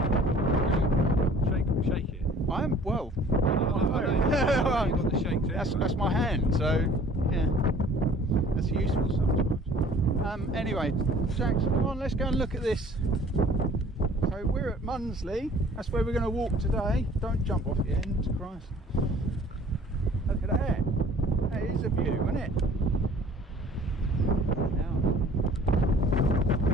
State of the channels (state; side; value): normal; both; correlation 0.52